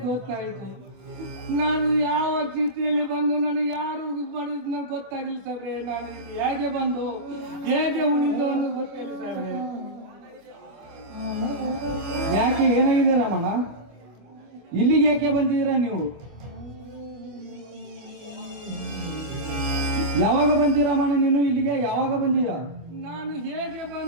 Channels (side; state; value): left; late; 25 ms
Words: ಗೊತ್ತಾಯ್ತು. ನಾನು ಯಾವ ಸ್ಥಿತಿಯಲ್ಲಿ ಬಂದು ನನಗೆ ಯಾರು ಮಾಡಿದ್ ನನಗೆ ಗೊತ್ತಾಗಿಲ್ಲ ಸಾಹೇಬ್ರೆ. ನಾನು ಇಲ್ಲಿ ಹೇಗೆ ಬಂದು ಹೇಗೆ ಉಳಿದು ಅನ್ನೋದು ಗೊತ್ತಿಲ್ಲ ಸಾಹೇಬ್ರೆ. ಯಾಕೆ ಏನಾಗಿದೆ ರಾಮಣ್ಣ? ಇಲ್ಲಿಗೆ ಯಾಕೆ ಬಂದಿದ್ದೀರಾ ನೀವು? ಯಾವಾಗ ಬಂದಿ ರಾಮಣ್ಣ ನೀನು ಇಲ್ಲಿಗೆ? ಯಾವಾಗ ಬಂದೀಯ? ನಾನು ಹೇಗೆ